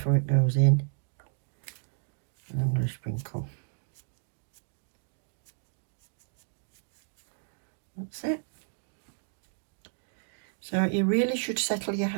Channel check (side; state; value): left; silent; digital silence